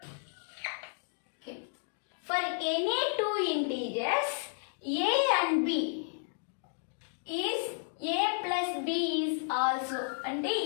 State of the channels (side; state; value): right; silent; digital silence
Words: For any two integers, A and B is A plus B is also. అంటే